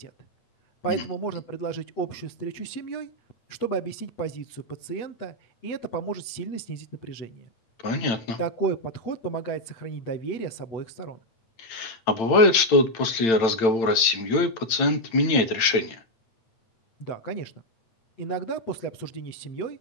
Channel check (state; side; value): late; right; 8.9 ms